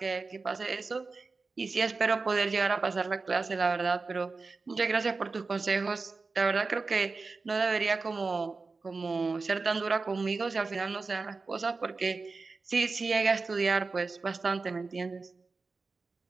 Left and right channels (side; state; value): left; quieter; 4.1 dB